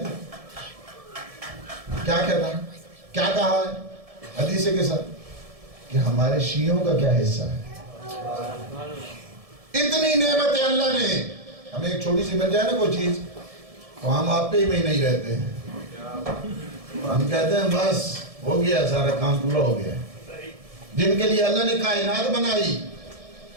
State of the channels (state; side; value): late; left; 1.7 ms